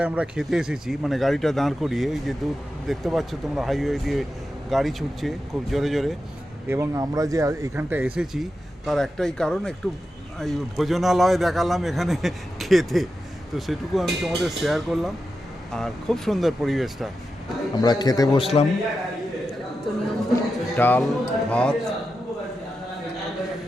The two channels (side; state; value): both; normal; correlation 0.90